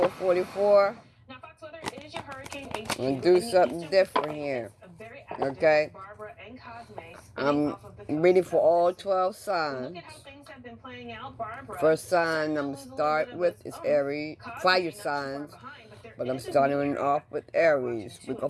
Now, Fox weather is your hurricane HQ. I'm gonna do something different here. Okay. I'm reading for all 12 signs. First sign I'm gonna start with is Aries, fire signs. But I'm starting off with Aries. We're gonna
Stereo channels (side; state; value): both; identical; correlation 1.00